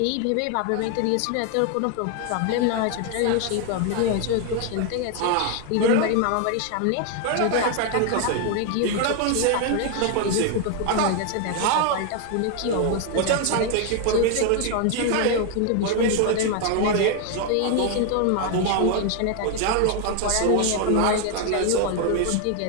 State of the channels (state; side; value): different; both; correlation 0.01